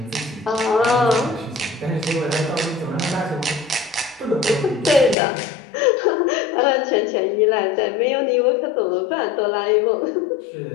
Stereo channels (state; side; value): drops out; right; at 5.2 s